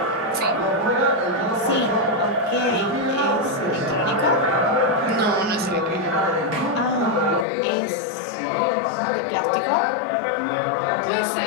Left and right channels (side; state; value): right; drops out; at 7.5 s